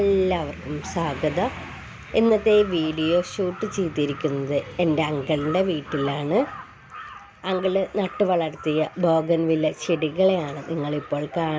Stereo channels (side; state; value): both; identical; correlation 1.00